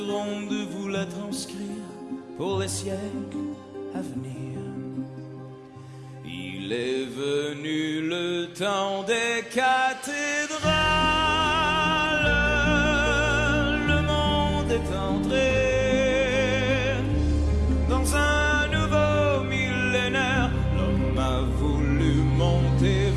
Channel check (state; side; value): identical; both; correlation 1.00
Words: de vous la transcrire pour les siècles à venir. Il est venu le temps des cathédrales, le monde est entré dans un nouveau millénaire. L'homme a voulu monter